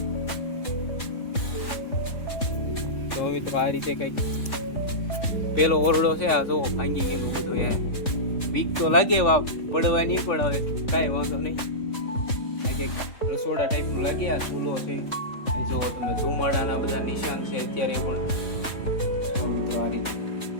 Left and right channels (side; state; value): right; late; 3.5 ms